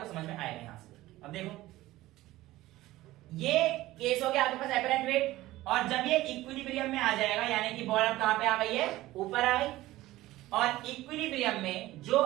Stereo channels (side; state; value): left; quieter; 16.9 dB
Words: समझ में आएगा यहां से। अब देखो ये केस हो गया आपके पास एपरेंट वेट, और जब ये इक्विलिब्रियम में आ जाएगा यानी कि बॉल अब कहां पे आ गई है, ऊपर आ गई। और इक्विलिब्रियम में जो